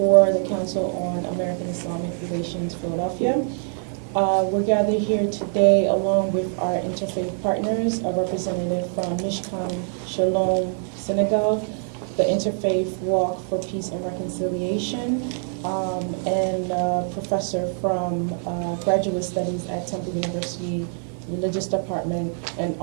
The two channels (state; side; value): silent; left; 62 dB below the other